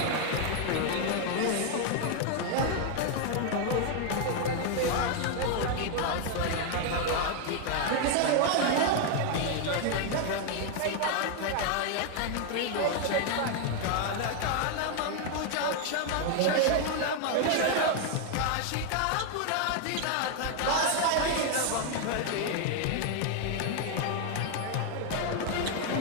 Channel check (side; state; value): both; different; correlation 0.01